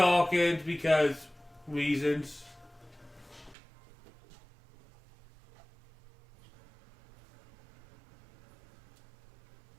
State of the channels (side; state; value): left; drops out; at 3.6 s